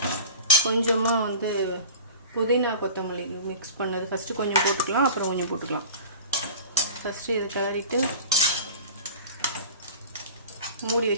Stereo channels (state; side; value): inverted; both; correlation -0.37